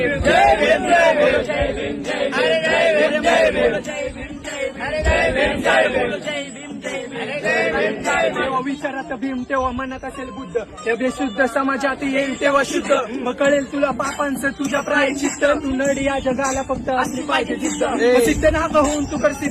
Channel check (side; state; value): both; identical; correlation 1.00